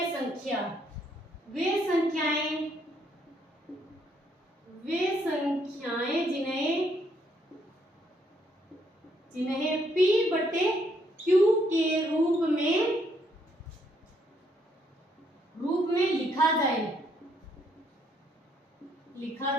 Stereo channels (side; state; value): both; normal; correlation 0.71